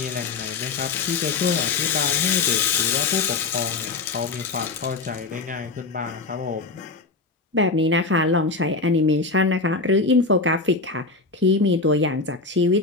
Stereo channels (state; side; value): quieter; right; 3.9 dB